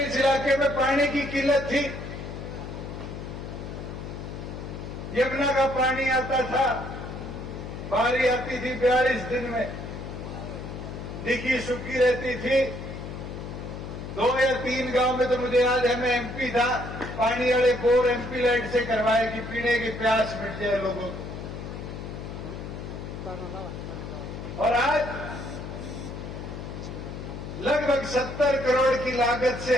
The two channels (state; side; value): noise; left; hum, 8 dB below the sound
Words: इलाके में पानी की किल्लत थी। यमुना का पानी आता था, बारी आती थी 42 दिन में, दिखी सूखी रहती थी। 2 या 3 गांव में तो मुझे याद है, मैं एमपी था, पानी वाले बोर एमपी लाइट से करवाए कि पीने की प्यास मिट जाए लोगों को। और आज लगभग 70 करोड़ की लागत